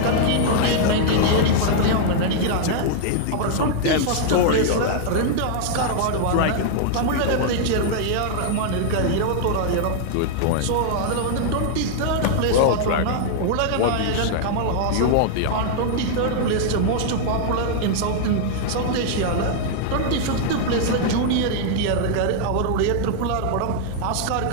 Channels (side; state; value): both; different; correlation -0.01